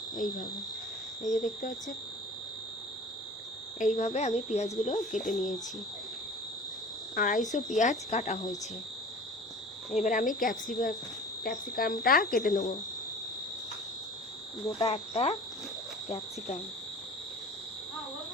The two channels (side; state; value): both; normal; correlation 0.42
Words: এইভাবে, এই যে দেখতে পাচ্ছেন, এইভাবে আমি পেঁয়াজগুলো কেটে নিয়েছি। 250 পেঁয়াজ কাটা হয়েছে। এবার আমি ক্যাপসিকামটা কেটে নেব। গোটা একটা ক্যাপসিকাম